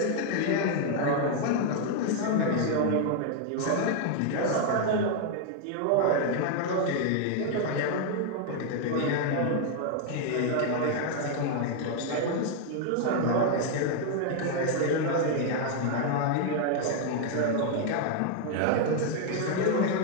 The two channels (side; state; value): both; different; correlation 0.00